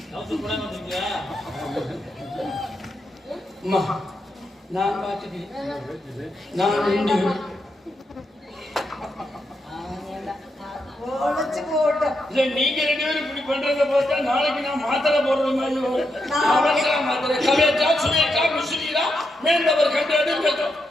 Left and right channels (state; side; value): normal; both; correlation 0.83